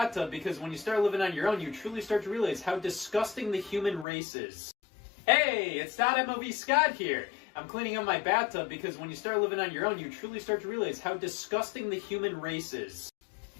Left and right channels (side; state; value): right; drops out; at 4.0 s